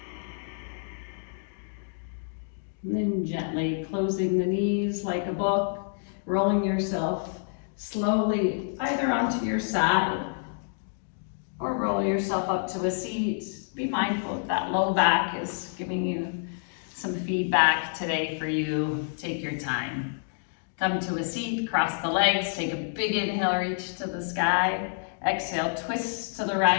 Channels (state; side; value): silent; right; digital silence